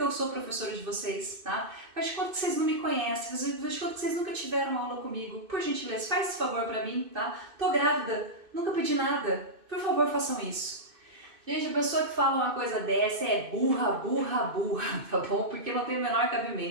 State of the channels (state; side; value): late; left; 2.6 ms